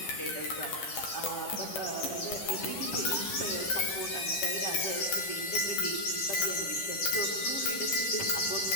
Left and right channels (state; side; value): late; right; 10 ms